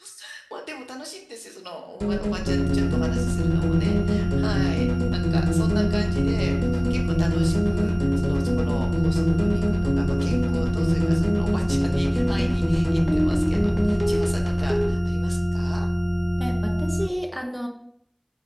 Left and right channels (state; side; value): identical; both; correlation 1.00